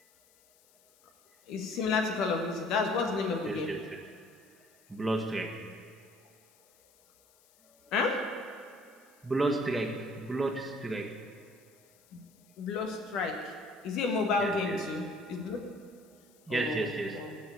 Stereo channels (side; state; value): left; noise; hiss, 30 dB below the sound